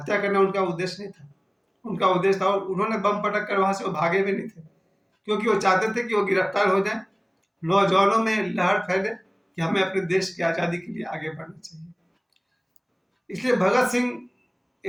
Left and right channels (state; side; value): identical; both; correlation 1.00